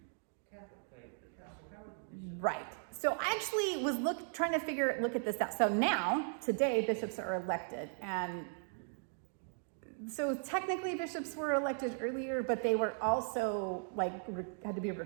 Catholic faith? How were the bishops? Right. So I actually was trying to look at this out. So now, today, bishops are elected, and so technically bishops were elected earlier, but they were also had to be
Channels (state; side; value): silent; left; 53 dB below the other